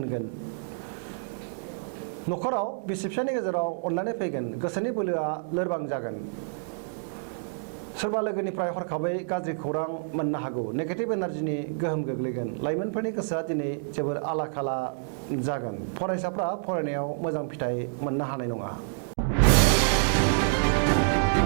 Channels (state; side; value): silent; left; digital silence